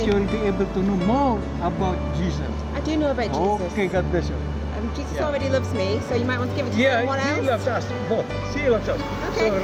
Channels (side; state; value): both; identical; correlation 1.00